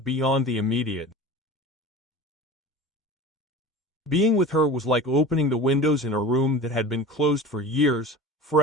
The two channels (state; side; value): normal; both; correlation 0.35